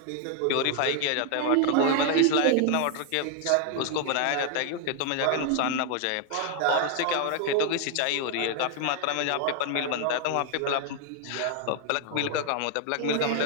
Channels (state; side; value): different; both; correlation 0.00